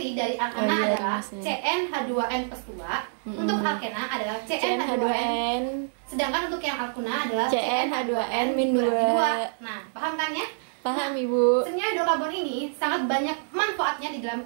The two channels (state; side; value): silent; left; 60 dB below the other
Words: dari alkana Oh, iya, adalah rumusnya. CnH2n plus 2. Untuk alkena adalah CnH2n. CnH2n, Sedangkan untuk yang alkuna adalah CnH2n min 2. Nah, paham kan ya? Paham Ibu? Senyawa hidrokarbon ini sangat banyak manfaatnya di dalam